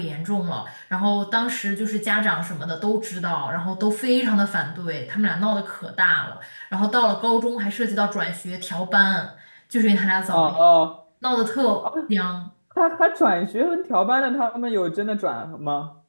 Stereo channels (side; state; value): both; inverted; correlation -1.00